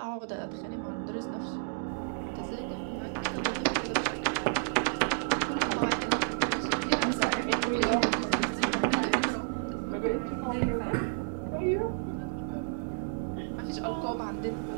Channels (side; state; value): left; silent; digital silence